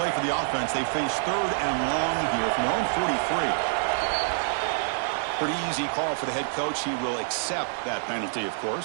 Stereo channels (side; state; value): left; silent; 60 dB below the other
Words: for the offense. They face 3rd and long here from their own 43. Pretty easy call for the head coach. He will accept that penalty, of